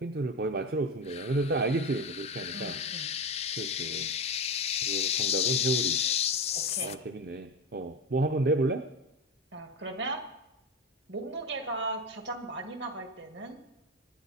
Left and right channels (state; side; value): normal; both; correlation 0.20